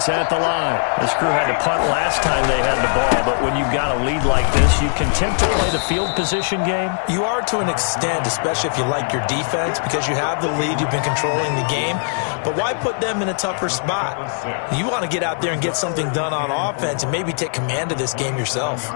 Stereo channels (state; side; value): silent; right; 57 dB below the other